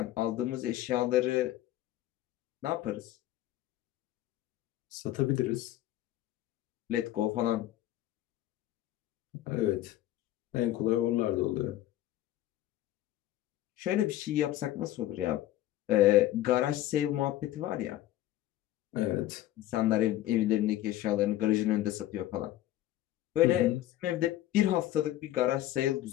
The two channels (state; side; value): quieter; right; 14.1 dB